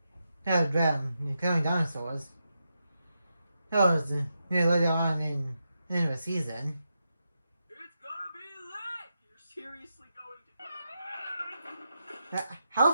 of them killing dinosaurs. That was later on in the season. It's gonna be lit! You're seriously going to... How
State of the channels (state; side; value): inverted; both; correlation -0.86